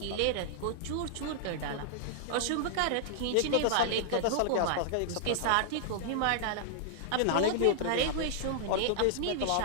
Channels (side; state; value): both; different; correlation -0.01